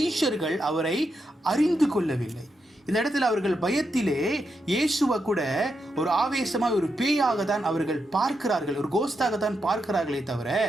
அவரை அறிந்து கொள்ளவில்லை. இந்த இடத்துல அவர்கள் பயத்திலே இயேசுவை கூட ஒரு ஆவேசமாக ஒரு பேயாக தான் அவர்கள் பார்க்கிறார்கள், ஒரு கோஸ்டாக தான் பார்க்கிறார்களே தவிர,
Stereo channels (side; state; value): both; normal; correlation 0.84